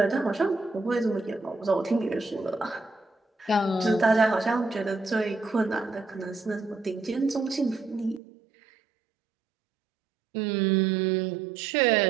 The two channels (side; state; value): left; drops out; at 8.2 s